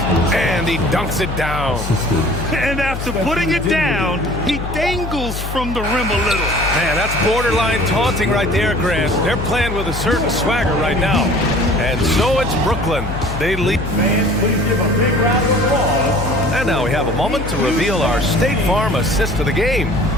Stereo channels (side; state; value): left; noise; hum, 6 dB below the sound